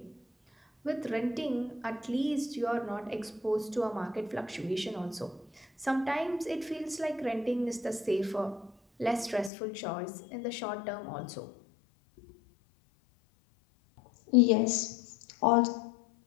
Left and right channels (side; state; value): right; drops out; at 9.5 s